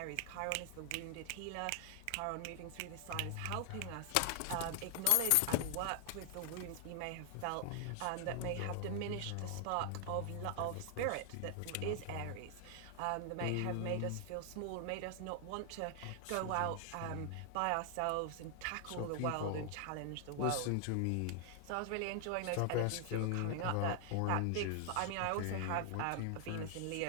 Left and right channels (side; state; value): both; different; correlation 0.00